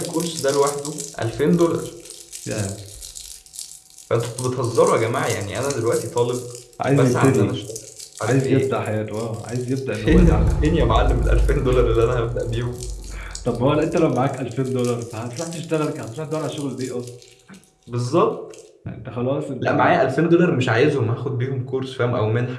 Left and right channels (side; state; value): both; identical; correlation 1.00